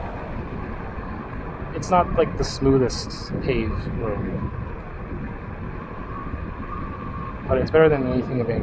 it's not like the smoothest paved road. But it's better than anything in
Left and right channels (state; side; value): identical; both; correlation 1.00